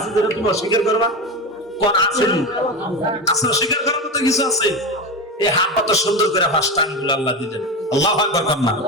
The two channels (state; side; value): normal; both; correlation 0.20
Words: যেটা তুমি অস্বীকার করবা? কোন আছে? আছে, অস্বীকার করার মতো কিছু আছে? এই হাত কত সুন্দর করে পাঁচটা আঙ্গুল আল্লাহ দিলেন। আল্লাহু আকবার কন্যা।